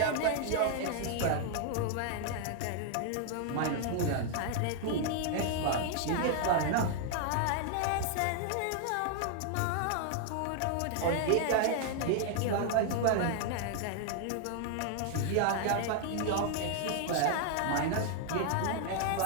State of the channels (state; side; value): different; both; correlation 0.00